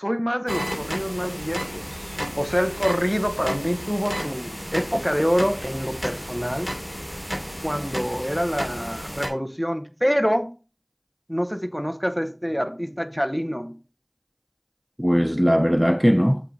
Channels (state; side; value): identical; both; correlation 1.00